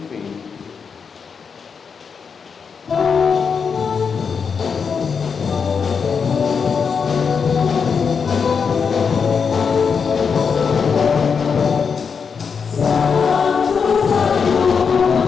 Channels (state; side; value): quieter; right; 6.0 dB